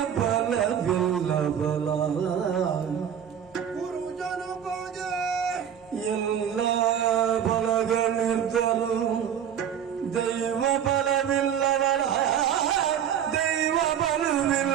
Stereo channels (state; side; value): quieter; left; 9.0 dB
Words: ಬಲವಿಲ್ಲ ಬಲ ಗುರುಜನ ಬಗ್ಗೆ ಎಲ್ಲ ಬಲಗಳಿರ್ದರು ದೈವ ಬಲವಿಲ್ಲವರ ದೈವ